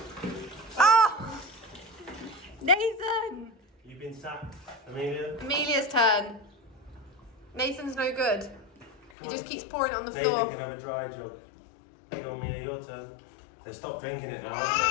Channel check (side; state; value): right; drops out; at 9.1 s